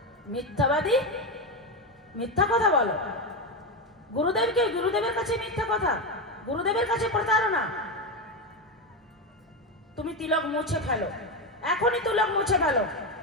মিথ্যাবাদী, মিথ্যা কথা বলো। গুরুদেবকে, গুরুদেবের কাছে মিথ্যা কথা, গুরুদেবের কাছে প্রতারণা। তুমি তিলক মুছে ফেলো, এখনই তিলক মুছে ফেলো।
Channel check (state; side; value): normal; both; correlation 0.12